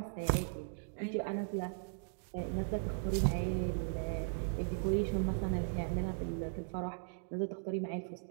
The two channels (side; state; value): left; silent; digital silence